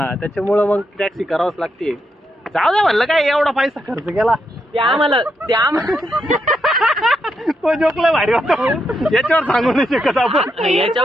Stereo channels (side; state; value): both; normal; correlation 0.81